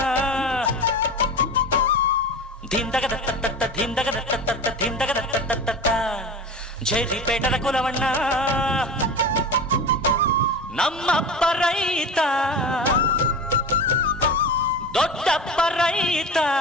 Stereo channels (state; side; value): normal; both; correlation 0.30